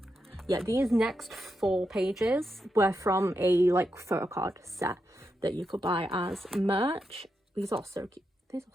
Yeah, these next 4 pages were from a like photo card set that you could buy as merch. These are so cute. These are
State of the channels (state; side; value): normal; both; correlation 0.85